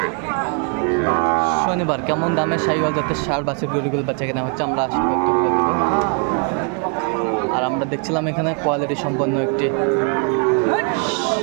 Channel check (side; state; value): left; quieter; 39.8 dB